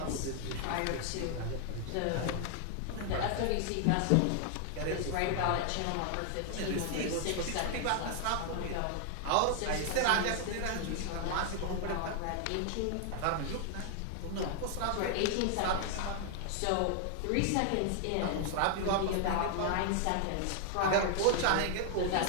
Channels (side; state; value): both; different; correlation 0.00